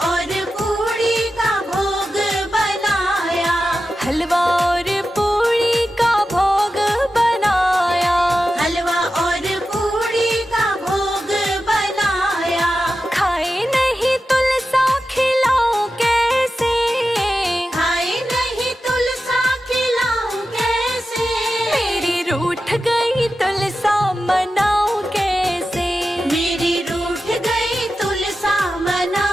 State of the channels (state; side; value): normal; both; correlation 0.92